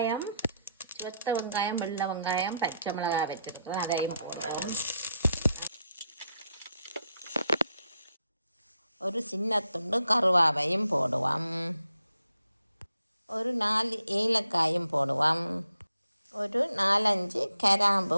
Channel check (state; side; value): inverted; both; correlation -0.79